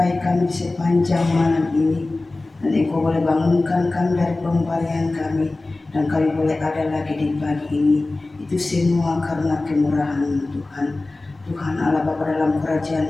kami sepanjang malam ini, dan Engkau boleh bangunkan kami dari pembalian kami, dan kami boleh ada lagi di pagi ini. Itu semua karena kemurahan Tuhan. Tuhan Allah Bapa dalam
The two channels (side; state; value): right; quieter; 3.1 dB